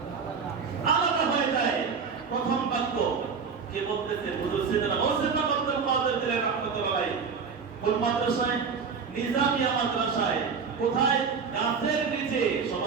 আলাদা হয়ে যায়। প্রথম বাক্য কে বলতেছে? হুজুর সাইয়েদনা হোসেন আব্দুল কাদের জিলানী রাহমাতুল্লাহ আলাইহি। কোন মাদ্রাসায়? নিজামিয়া মাদ্রাসায়। কোথায়? গাছের নিচে।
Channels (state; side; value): quieter; left; 5.7 dB